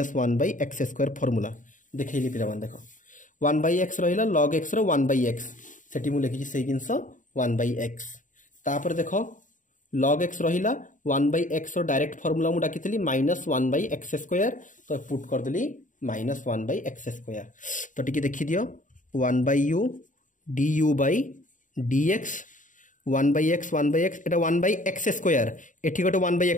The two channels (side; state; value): right; late; 0.37 ms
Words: 1 by x square formula देखैली पिला मन देखो 1 बाय x रहिला log x रो 1 बाय x सेठी मु लिखि से जिंस 1 बाय x तापर देखो log x रहिला 1 बाय x रो डायरेक्ट फार्मूला मु डाकितली माइनस 1 बाय x स्क्वायर तो पुट कर देली माइनस 1 बाय x स्क्वायर। तो टिके देखि दियो 1 by u du by dx 1 by x एटा 1 बाय x स्क्वायर एठी गोटे 1 बाय